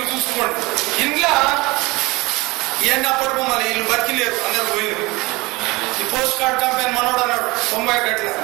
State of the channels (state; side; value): quieter; left; 22.8 dB